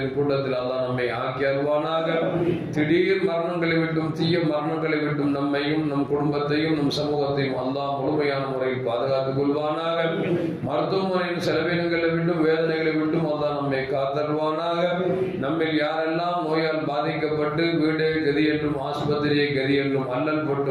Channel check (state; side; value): identical; both; correlation 1.00